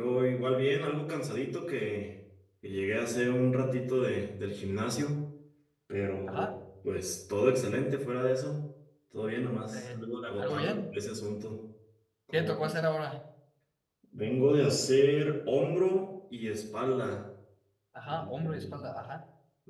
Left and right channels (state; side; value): identical; both; correlation 1.00